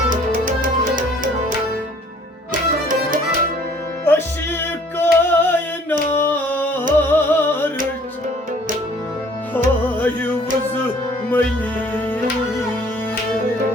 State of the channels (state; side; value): normal; both; correlation 0.56